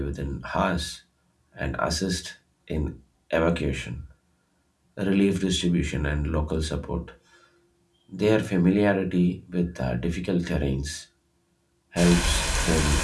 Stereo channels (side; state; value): both; identical; correlation 1.00